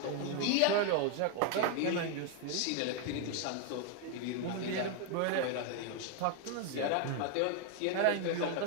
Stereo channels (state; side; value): different; both; correlation 0.01